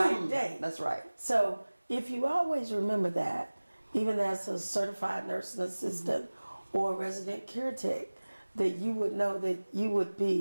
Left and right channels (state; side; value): inverted; both; correlation -1.00